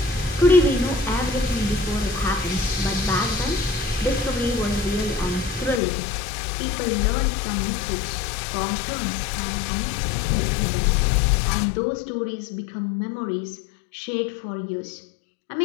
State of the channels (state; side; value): drops out; right; at 5.8 s